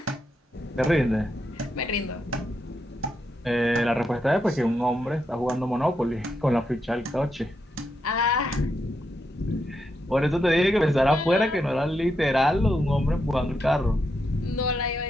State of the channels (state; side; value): normal; both; correlation 0.82